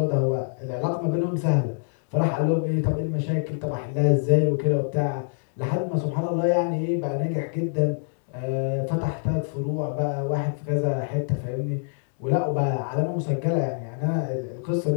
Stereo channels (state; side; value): silent; right; digital silence